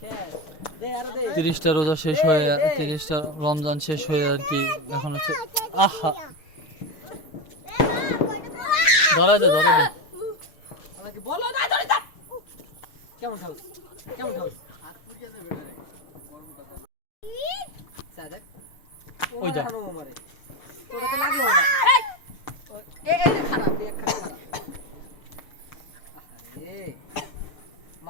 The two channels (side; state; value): right; late; 6.6 ms